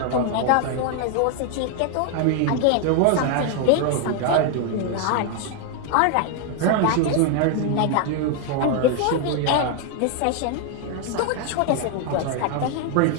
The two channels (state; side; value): different; both; correlation 0.00